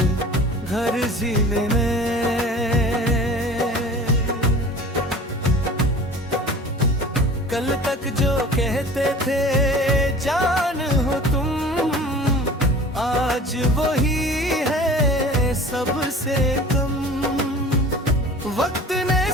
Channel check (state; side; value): normal; both; correlation 0.42